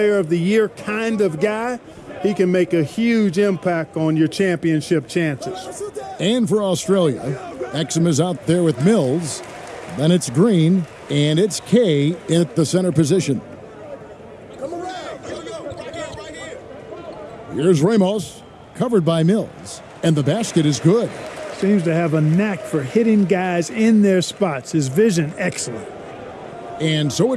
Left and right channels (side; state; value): both; identical; correlation 1.00